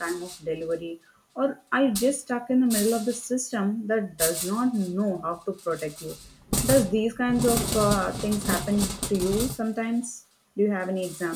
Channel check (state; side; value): identical; both; correlation 1.00